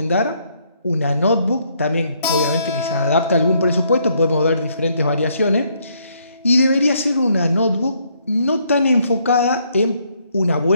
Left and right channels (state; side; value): inverted; both; correlation -0.70